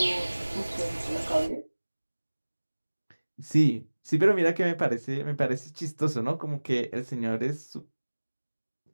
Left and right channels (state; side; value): inverted; both; correlation -1.00